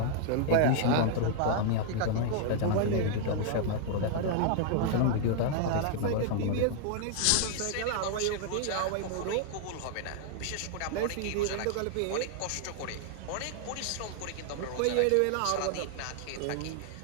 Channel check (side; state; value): both; different; correlation 0.00